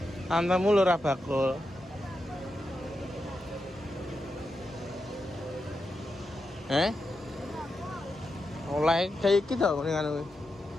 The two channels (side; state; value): both; normal; correlation 0.87